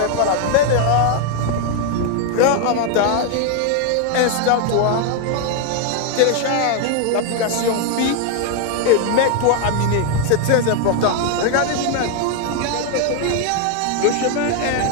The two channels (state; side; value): different; both; correlation 0.01